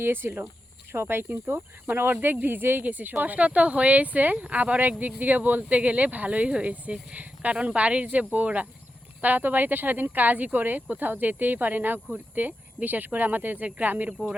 সবাই কিন্তু মানে অর্ধেক ভিজেই গেছে। কষ্ট তো হয়েছে, আবার একদিক দিকে বলতে গেলে ভালোই হয়েছে, কারণ বাড়ির যে বউরা, তারা তো বাড়িতে সারাদিন কাজই করে, কোথাও যেতেই পারে না ঘুরতে। বিশেষ করে আমাদের যে গ্রামের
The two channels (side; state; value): both; normal; correlation 0.89